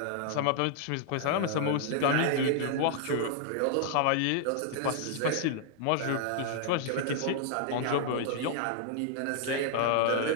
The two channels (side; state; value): both; different; correlation -0.01